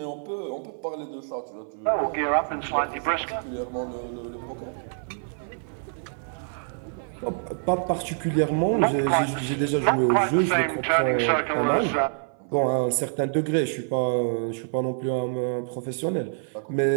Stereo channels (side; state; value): left; silent; 58 dB below the other